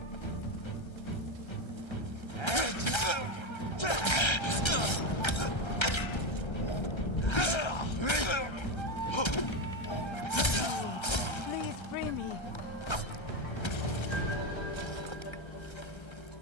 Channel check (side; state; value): right; late; 1.3 ms